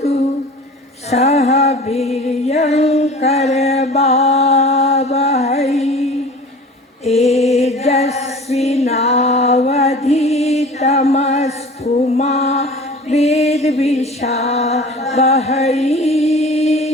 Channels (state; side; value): normal; both; correlation 0.41